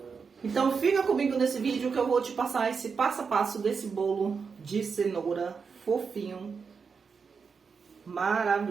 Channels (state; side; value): quieter; left; 5.6 dB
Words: Então fica comigo nesse vídeo que eu vou te passar esse passo a passo desse bolo de cenoura fofinho,